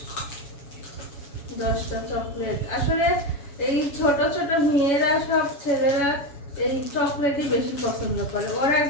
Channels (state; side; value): late; right; 7.1 ms